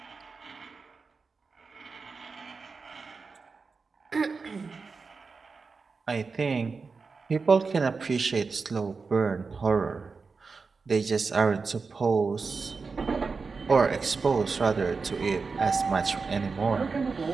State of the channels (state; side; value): quieter; left; 4.6 dB